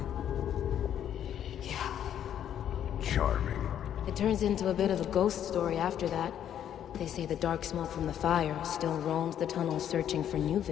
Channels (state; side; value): quieter; right; 10.0 dB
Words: Yeah. Charming. It turns into a bit of a ghost story after that. They say the dark smoke from the fire still roams the tunnels searching for new